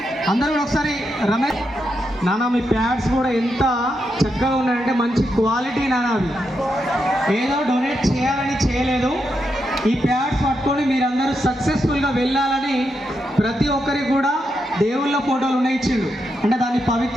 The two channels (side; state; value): both; normal; correlation 0.84